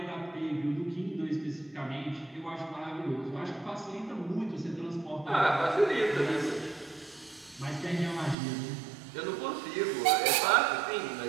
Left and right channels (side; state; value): left; drops out; at 8.3 s